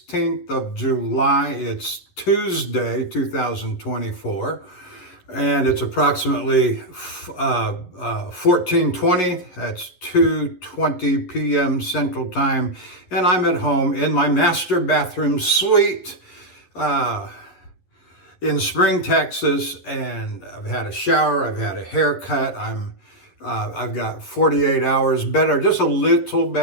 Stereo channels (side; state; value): right; late; 11 ms